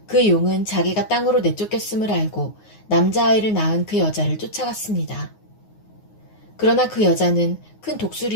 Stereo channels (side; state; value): right; late; 9.6 ms